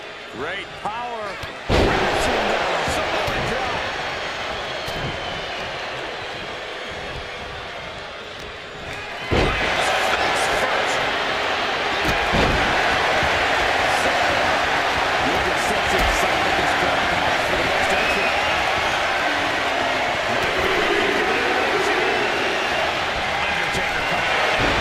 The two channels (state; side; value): identical; both; correlation 1.00